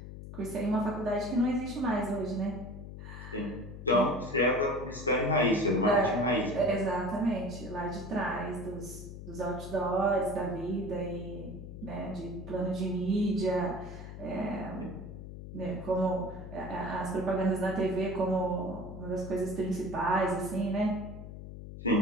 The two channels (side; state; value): left; noise; hum, 11 dB below the sound